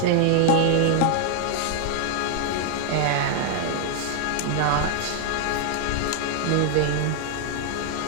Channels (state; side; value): different; both; correlation 0.00